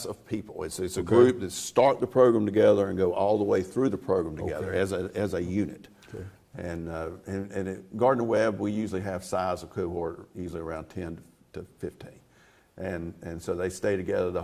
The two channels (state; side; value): identical; both; correlation 1.00